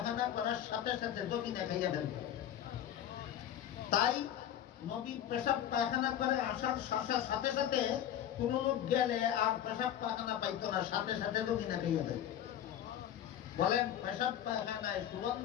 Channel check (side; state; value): right; quieter; 10.7 dB